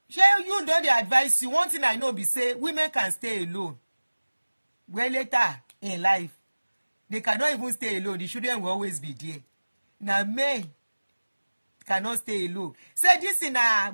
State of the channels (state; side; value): inverted; both; correlation -1.00